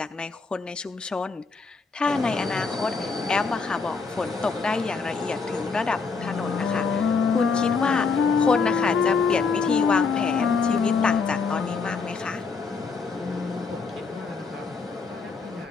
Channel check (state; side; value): quieter; right; 4.8 dB